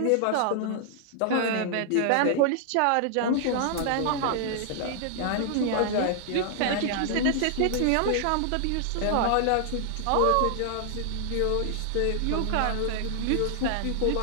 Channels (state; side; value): different; both; correlation -0.01